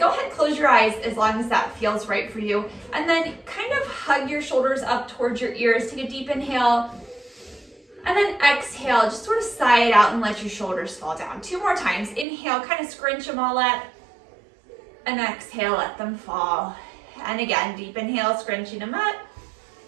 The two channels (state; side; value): drops out; left; at 12.2 s